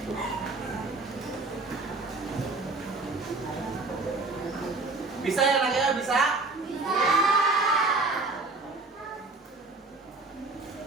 Bisa ya anaknya? Bisa?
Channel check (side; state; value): left; quieter; 3.5 dB